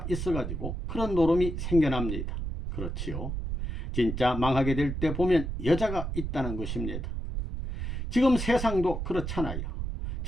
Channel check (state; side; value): noise; right; rumble, 4 dB below the sound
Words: 있어가지고 그런 노름이 생겨납니다. 그렇지요. 진짜 망하게 될 때 보면 여자가 있다는 것입니다. 지금 세상도 그렇잖아요.